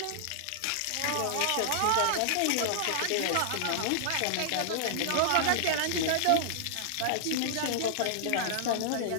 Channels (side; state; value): both; different; correlation -0.01